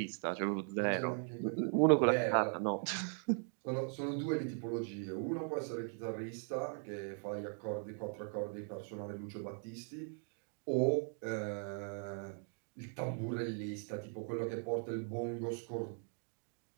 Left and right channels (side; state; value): left; silent; 52 dB below the other